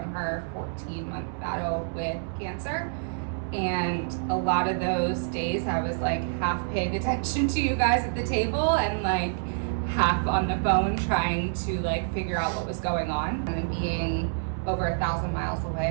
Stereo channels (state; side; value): silent; left; 60 dB below the other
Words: her 14-month battle with cancer. And a lot of those days I was like half paying attention to you guys at the table and like half on the phone trying to like figure out what was going on. And being over 1,000 miles